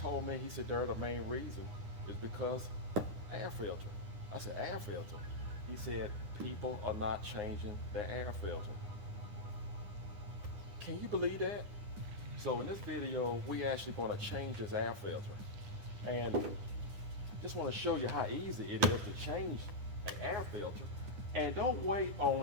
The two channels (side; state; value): left; late; 9.8 ms